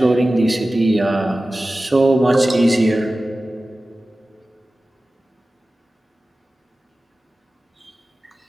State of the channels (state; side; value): normal; both; correlation 0.96